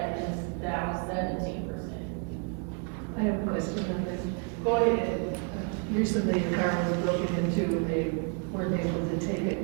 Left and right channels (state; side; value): quieter; left; 38.3 dB